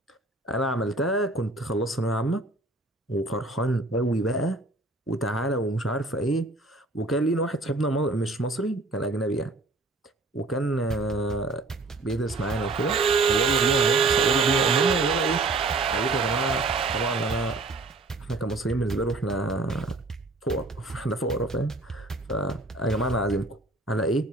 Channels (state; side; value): quieter; left; 3.1 dB